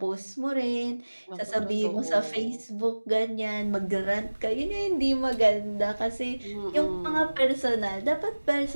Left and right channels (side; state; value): both; inverted; correlation -1.00